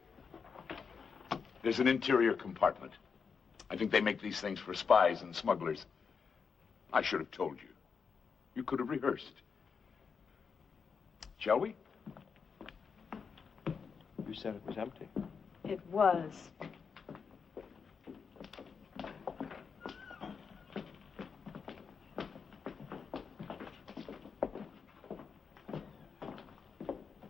There's an interior compartment. I think they make these things for spies and smugglers. I should have told you. You could have rehearsed. Shall we? You said it was empty. It was.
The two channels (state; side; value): quieter; right; 5.9 dB